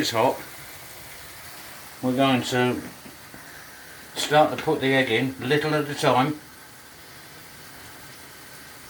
hot, we're going to start to put the egg in, little at a time.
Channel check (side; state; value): both; identical; correlation 1.00